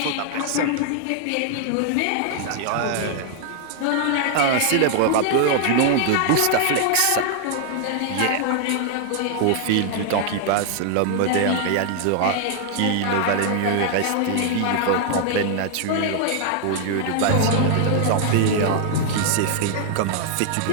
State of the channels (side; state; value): both; different; correlation 0.00